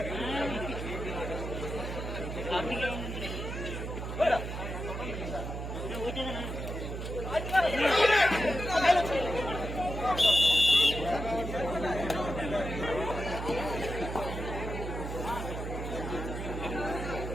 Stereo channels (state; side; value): noise; right; hum, 5 dB below the sound